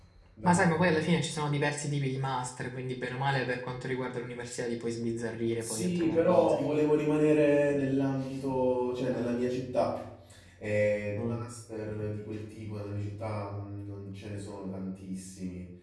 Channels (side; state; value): both; identical; correlation 1.00